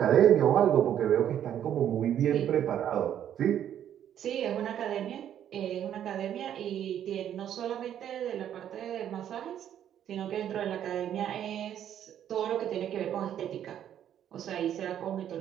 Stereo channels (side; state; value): left; quieter; 10.2 dB